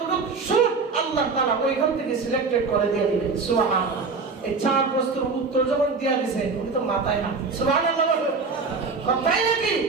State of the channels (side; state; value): left; quieter; 4.5 dB